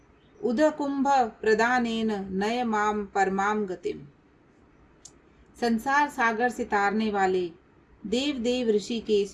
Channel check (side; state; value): both; identical; correlation 1.00